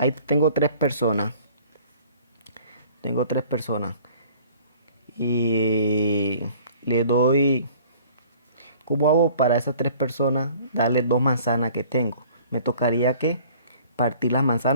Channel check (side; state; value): both; inverted; correlation -0.51